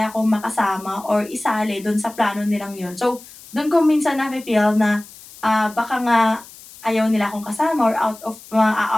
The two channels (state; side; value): noise; left; hiss, 20 dB below the sound